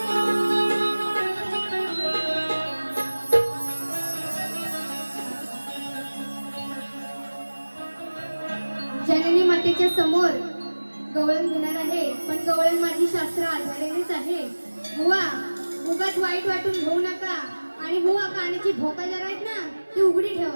जननी मातेच्या समोर गवळण घेणार आहे पण गवळण माझी शास्त्र आधारेनेच आहे बुवा उगाच वाईट वाटून घेऊ नका आणि बुवा कानाची भोका जरा आहेत ना ती उघडी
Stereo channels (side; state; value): both; inverted; correlation -1.00